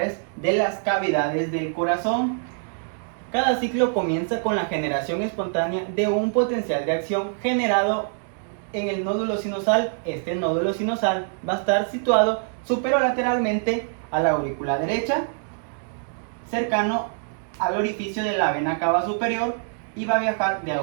de las cavidades del corazón. Cada ciclo comienza con la generación espontánea de un potencial de acción generado en el nódulo sinusal. Este nódulo sinusal va a estar situado superolateralmente a la aurícula derecha, cercano al orificio de la vena cava superior, y va a viajar de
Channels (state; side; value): silent; left; 62 dB below the other